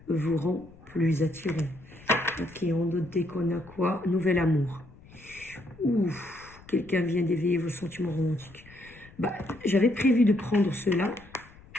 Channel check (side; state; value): left; noise; rumble, 23 dB below the sound